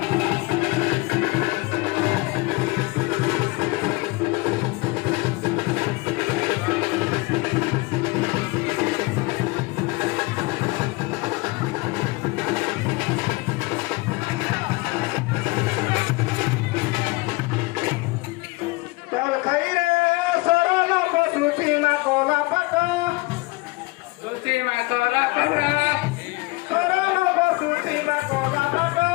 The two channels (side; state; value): right; quieter; 24.3 dB